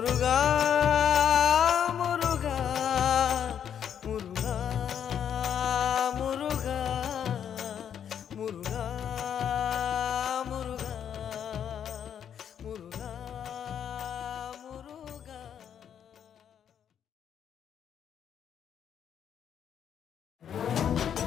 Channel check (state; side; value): quieter; right; 8.8 dB